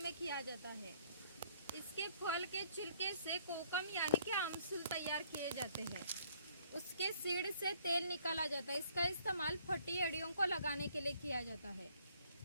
में किया जाता है। इसके फल के छिलके से कोकम यानी कि आमसूल तैयार किए जाते हैं। उसके सीड से तेल निकाला जाता है। इसका इस्तेमाल फटी हड्डियों को लगाने के लिए किया जाता है।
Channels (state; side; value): inverted; both; correlation -0.62